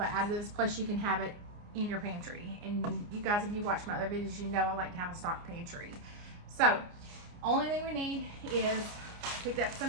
additives, plus you can have it in your pantry. And you guys, if you watch my other videos, you know I like to have a stock pantry. So only thing we need is, picked up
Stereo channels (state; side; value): late; left; 29 ms